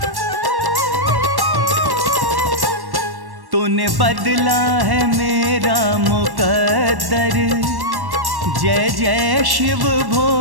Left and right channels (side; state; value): left; late; 1.1 ms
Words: तूने बदला है मेरा मुकद्दर, जय जय शिव